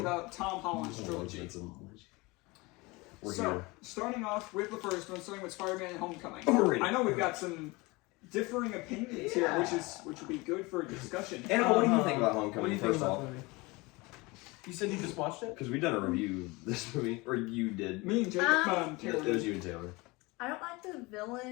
Tom Holland's trilogy. So, starting off with the first one, starting with Spider-Man Homecoming. I know we've got some differing opinions here, which will be good for discussion. Annabel, what do you think about Homecoming? First off, you said you just watched it? because we done a review of this movie, or you did. Me and Jacob. It was you and Taylor. I don't like the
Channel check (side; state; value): right; quieter; 24.2 dB